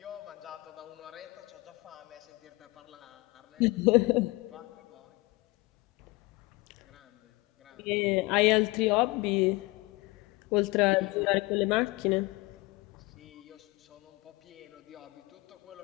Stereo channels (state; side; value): quieter; right; 23.0 dB